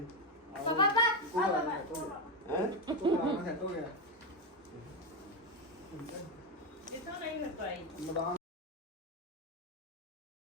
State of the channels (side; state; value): both; normal; correlation 0.09